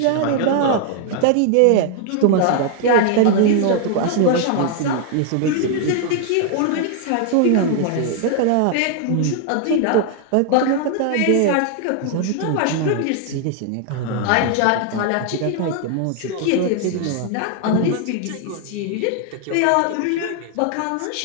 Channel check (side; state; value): both; different; correlation 0.00